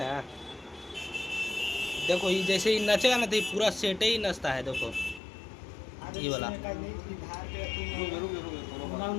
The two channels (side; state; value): right; drops out; at 5.2 s